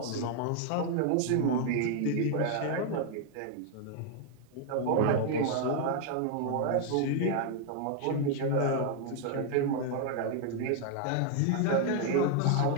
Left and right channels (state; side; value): different; both; correlation 0.00